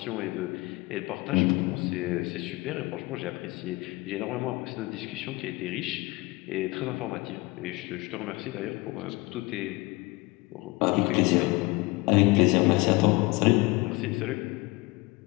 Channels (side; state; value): right; quieter; 23.3 dB